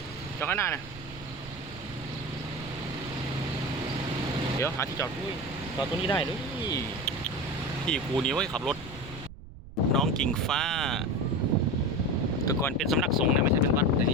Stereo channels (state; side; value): noise; right; rumble, 16 dB below the sound